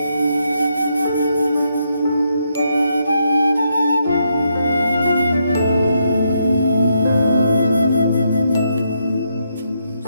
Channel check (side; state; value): both; inverted; correlation -0.78